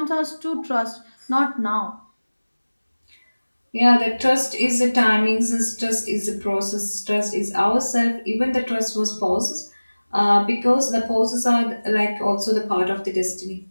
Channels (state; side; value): inverted; both; correlation -1.00